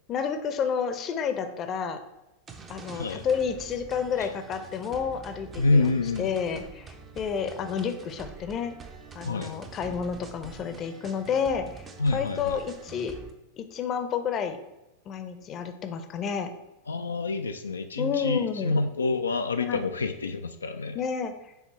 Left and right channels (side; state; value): right; quieter; 4.6 dB